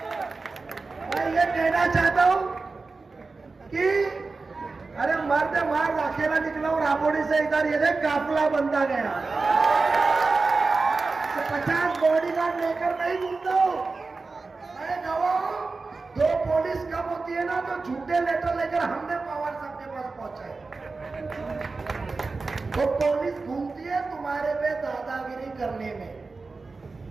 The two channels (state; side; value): quieter; left; 4.0 dB